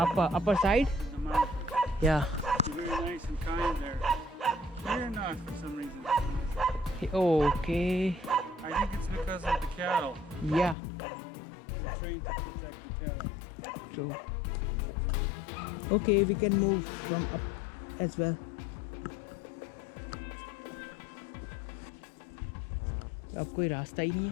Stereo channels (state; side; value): drops out; right; at 10.8 s